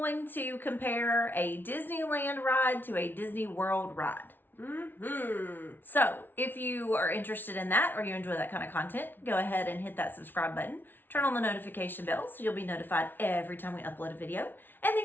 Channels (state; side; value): late; right; 0.096 ms